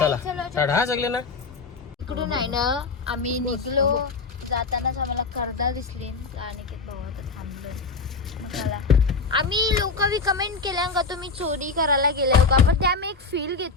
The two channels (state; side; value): quieter; right; 4.2 dB